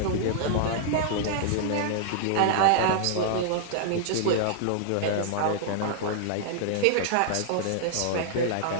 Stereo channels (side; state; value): both; different; correlation -0.01